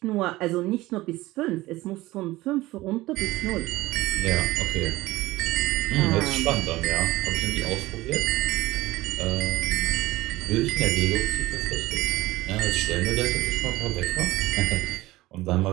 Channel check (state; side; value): quieter; left; 18.4 dB